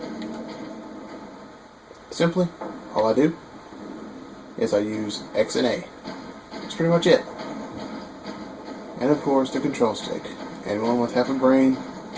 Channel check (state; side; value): identical; both; correlation 1.00